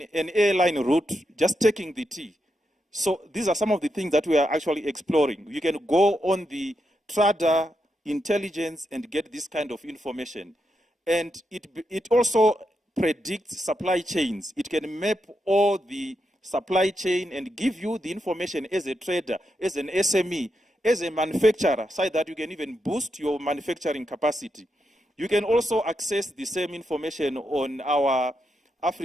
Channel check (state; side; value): normal; both; correlation 0.84